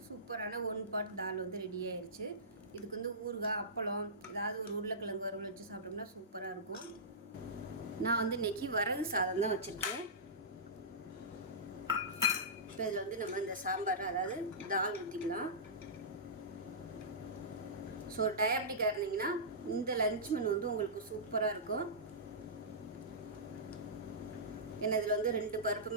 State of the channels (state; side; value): normal; both; correlation -0.18